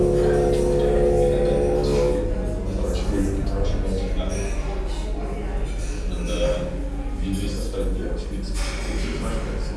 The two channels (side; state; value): both; identical; correlation 1.00